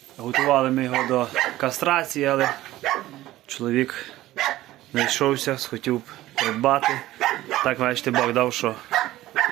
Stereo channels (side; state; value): left; quieter; 15.8 dB